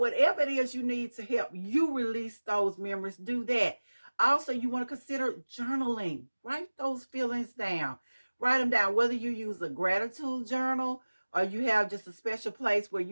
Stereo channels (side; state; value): both; inverted; correlation -1.00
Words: it is you need to help you release those memories, do that. Also, you want to consider journaling. Write those feelings down. Write them down, whether you use a gratitude journal or you have just a special place where